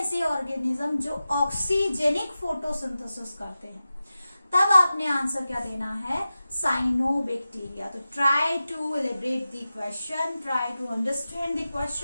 ऑर्गेनिज्म जो ऑक्सीजेनिक फोटोसिंथेसिस करते हैं, तब आपने आंसर क्या देना है, साइनोबैक्टीरिया. तो try to elaborate the question, try to understand the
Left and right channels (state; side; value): inverted; both; correlation -0.94